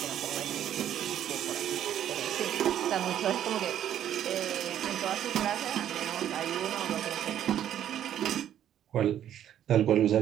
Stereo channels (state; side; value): quieter; left; 10.7 dB